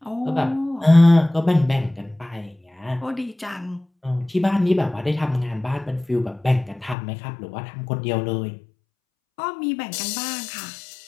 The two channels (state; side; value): drops out; right; at 7.0 s